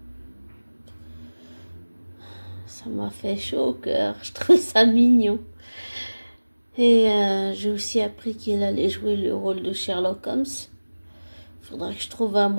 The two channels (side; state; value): both; inverted; correlation -1.00